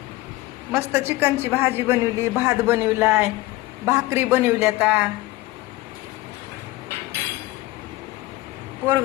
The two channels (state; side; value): quieter; right; 18.9 dB